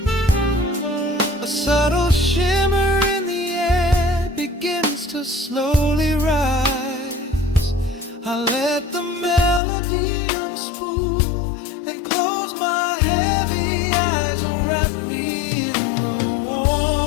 A subtle shimmer in the air begins to slowly rise. I let the melody unspool and close my heavy eyes, or wrap me in the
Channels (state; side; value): drops out; right; at 9.6 s